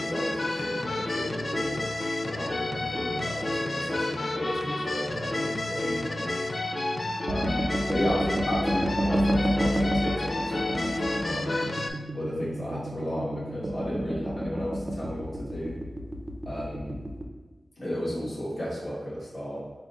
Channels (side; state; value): both; normal; correlation 0.95